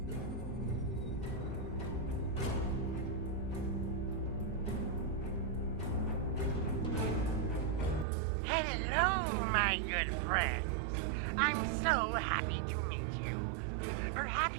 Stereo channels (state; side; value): drops out; left; at 8.1 s